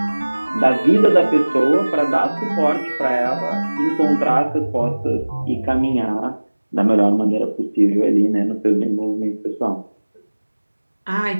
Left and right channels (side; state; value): both; inverted; correlation -1.00